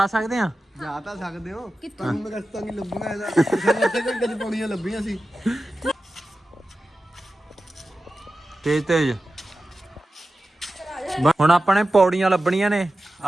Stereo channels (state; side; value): normal; both; correlation 0.94